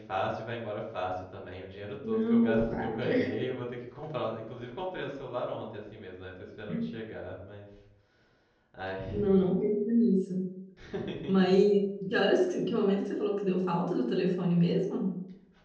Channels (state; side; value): identical; both; correlation 1.00